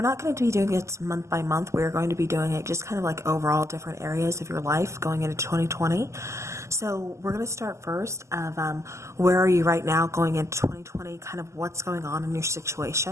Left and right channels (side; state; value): left; late; 0.14 ms